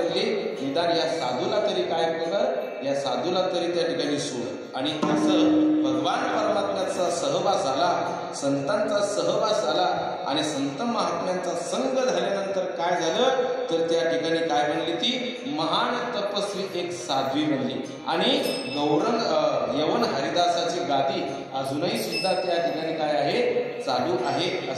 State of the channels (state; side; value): identical; both; correlation 1.00